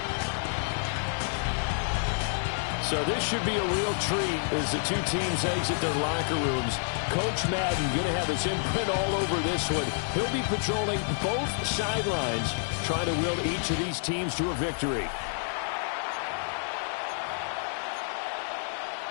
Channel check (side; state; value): right; silent; digital silence